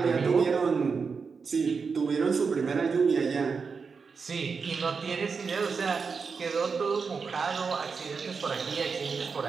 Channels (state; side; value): quieter; left; 5.3 dB